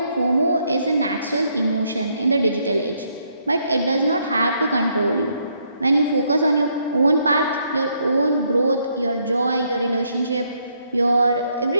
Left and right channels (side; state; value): both; inverted; correlation -0.73